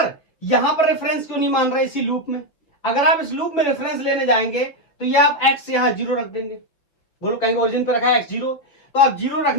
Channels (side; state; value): right; late; 5.6 ms